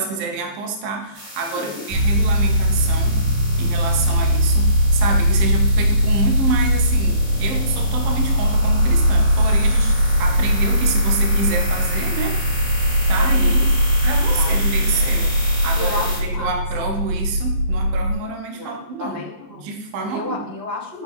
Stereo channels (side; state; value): left; late; 15 ms